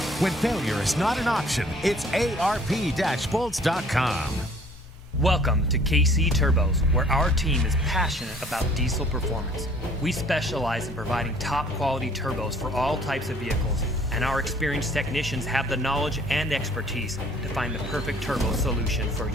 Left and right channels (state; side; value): normal; both; correlation 0.56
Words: When failure is not an option, it's ARP-bolts.com. Welcome to KC Turbos, where our team is passionate about diesel performance. We specialize in providing top quality turbos for all types of vehicles, and our experienced technicians have the knowledge and expertise to find the perfect turbo solution for